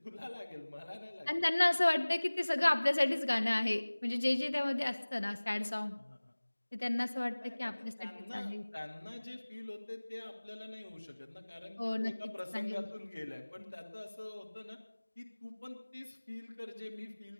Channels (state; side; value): inverted; both; correlation -1.00